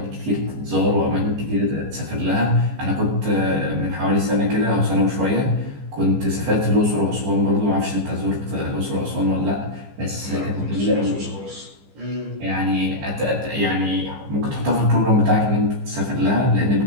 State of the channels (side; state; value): left; late; 15 ms